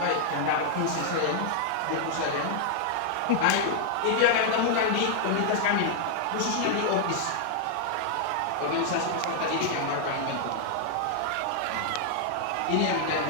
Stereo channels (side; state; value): both; different; correlation -0.01